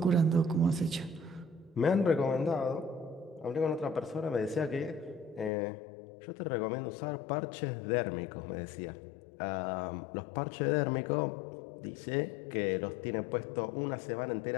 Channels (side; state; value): right; drops out; at 5.5 s